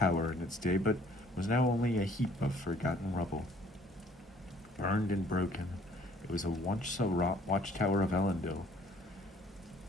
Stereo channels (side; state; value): both; normal; correlation 0.58